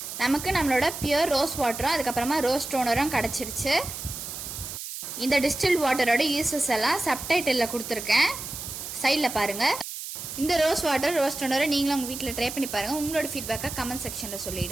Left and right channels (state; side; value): noise; right; hiss, 8 dB below the sound